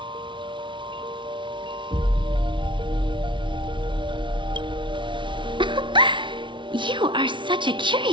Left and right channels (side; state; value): left; late; 0.24 ms